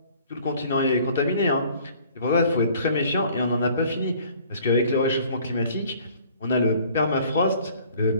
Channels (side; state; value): both; inverted; correlation -0.54